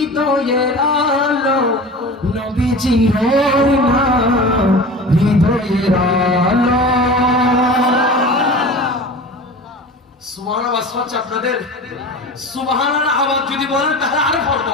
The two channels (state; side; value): normal; both; correlation 0.35